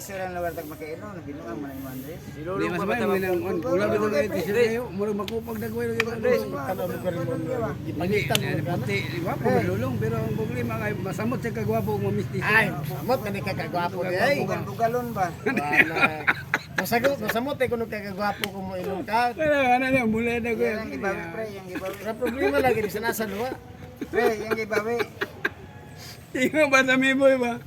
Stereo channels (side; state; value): both; identical; correlation 1.00